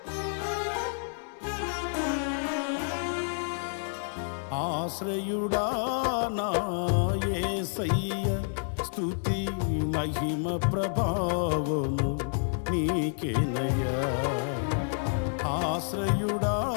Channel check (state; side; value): silent; right; 58 dB below the other